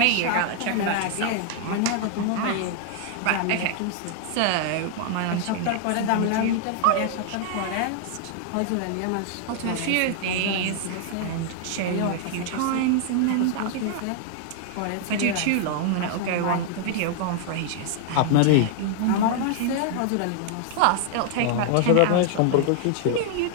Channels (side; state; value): both; different; correlation 0.00